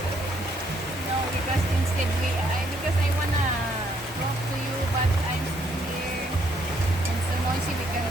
No, because instead because I wanna talk to you, but I'm still here. And so noisy, we can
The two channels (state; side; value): normal; both; correlation 0.70